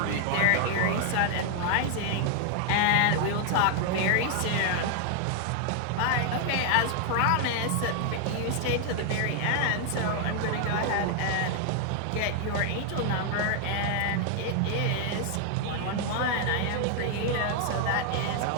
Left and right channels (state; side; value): different; both; correlation 0.00